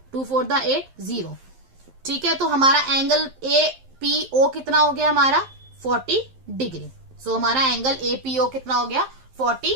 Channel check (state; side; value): late; left; 11 ms